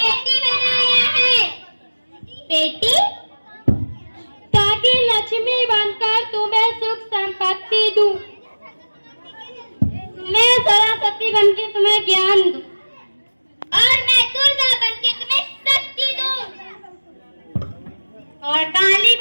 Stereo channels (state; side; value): inverted; both; correlation -1.00